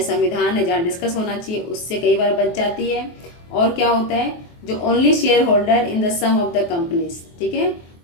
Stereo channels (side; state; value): right; late; 23 ms